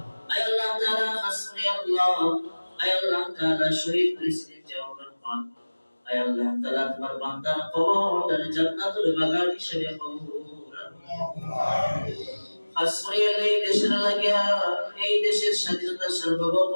আয় আল্লাহ তাআলা হাসবি আল্লাহ আয় আল্লাহ তাআলা শহীদ প্রেসিডেন্ট জিয়াউর রহমান আয় আল্লাহ তাআলা তোমার বান্দার কবরটা জান্নাতুল বাগান হিসেবে কবুল হাসবি এই দেশের লাগিয়া এই দেশের স্বাধীনতা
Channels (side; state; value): both; inverted; correlation -1.00